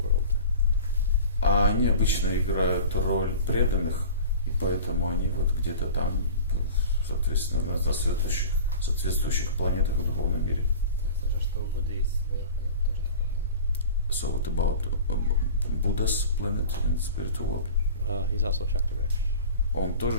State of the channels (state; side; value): inverted; both; correlation -0.38